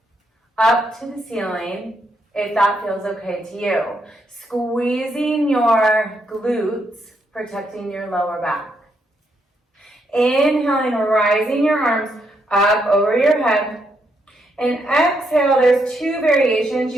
up to the ceiling, if that feels okay to you. Squeezing your glutes, protecting your lower back. Inhaling, rising your arms up over your head. And exhale, there's 2 variations.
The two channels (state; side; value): normal; both; correlation 0.77